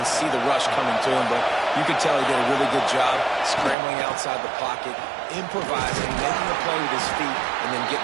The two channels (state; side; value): drops out; left; at 3.8 s